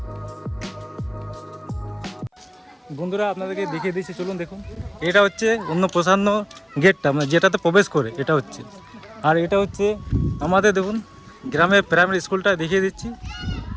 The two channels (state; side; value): identical; both; correlation 1.00